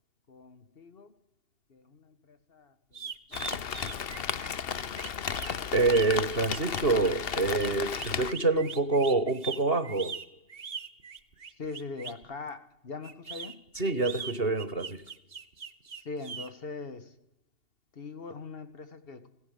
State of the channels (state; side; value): late; right; 2.7 ms